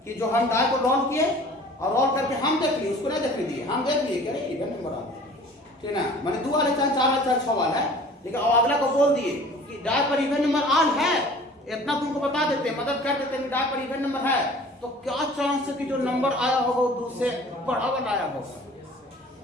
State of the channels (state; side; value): normal; both; correlation 0.47